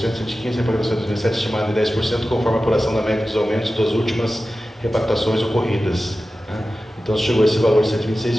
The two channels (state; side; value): normal; both; correlation 0.94